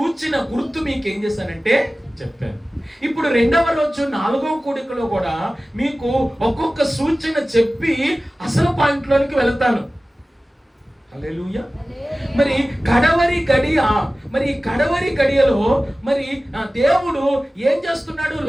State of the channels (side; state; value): both; normal; correlation 0.97